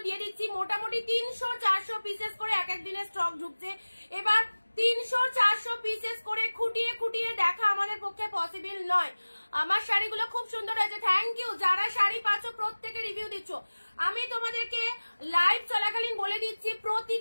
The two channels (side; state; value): both; inverted; correlation -1.00